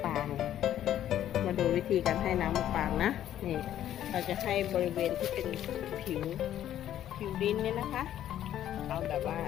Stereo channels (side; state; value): right; quieter; 11.5 dB